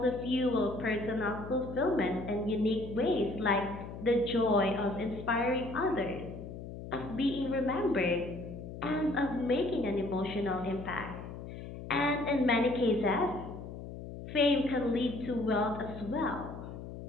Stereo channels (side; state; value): left; noise; hum, 10 dB below the sound